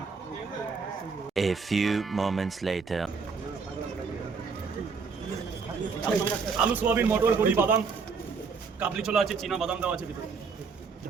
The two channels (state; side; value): quieter; left; 5.2 dB